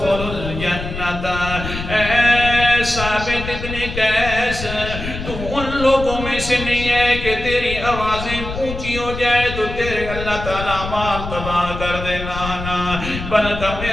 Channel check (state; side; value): noise; left; rumble, 8 dB below the sound